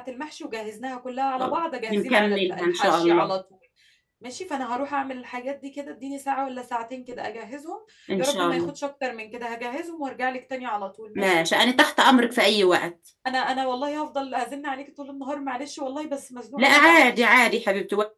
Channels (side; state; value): both; identical; correlation 1.00